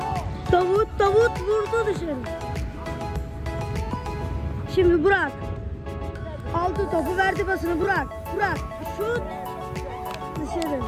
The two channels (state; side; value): identical; both; correlation 1.00